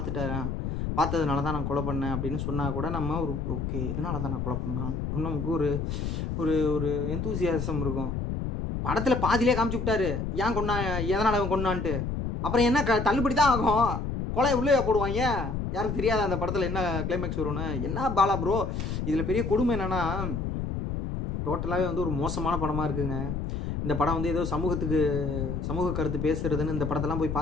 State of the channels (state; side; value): noise; left; rumble, 3 dB below the sound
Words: பார்த்ததுனால தான் நான் கொலை பண்ணேன் அப்படின்னு சொன்னால் கூட நம்ம ஒரு ஓகே இதனால தான் நான் கொலை பண்ணேன் அப்படின்னு நமக்கு ஒரு எந்தூசியாசம் இருக்கும். படத்தில் பாதியிலே காமிச்சு விட்டாரு ஏன் கொண்டா, எதனால் அவன் கொண்டான்ட்டு. அப்புறம் என்ன தள்ளுபடி தான் ஆகும், கொலை உள்ளே போடுவாங்க. யாருக்கு தெரியாத அந்த படத்தில் என்ன கிளைமேக்ஸ் வரும்னு. என்ன பாலா ப்ரோ, இதில் பெரிய கொடுமை என்னென்னா டோட்டலாகவே வந்து ஒரு மோசமான படமாக இருக்குங்க. இந்த படம் வந்து ஏதோ சமூக கருத்து பேசுகிறதுன்னு இந்த படத்தெல்லாம் போய்